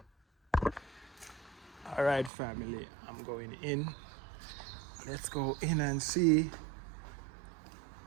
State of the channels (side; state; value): left; drops out; at 2.3 s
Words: All right, family, I'm going in. Let's go in and see